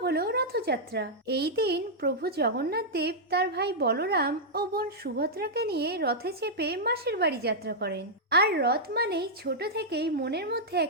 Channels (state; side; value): normal; both; correlation -0.07